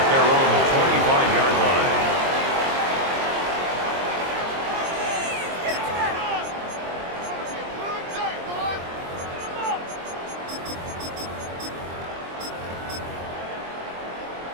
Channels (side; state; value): left; late; 23 ms